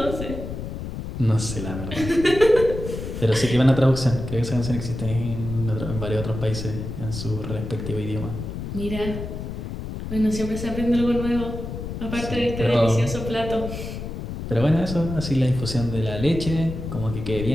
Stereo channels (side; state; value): left; noise; rumble, 7 dB below the sound